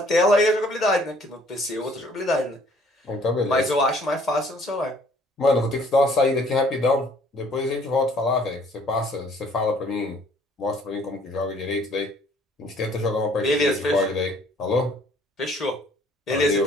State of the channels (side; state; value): both; normal; correlation 0.59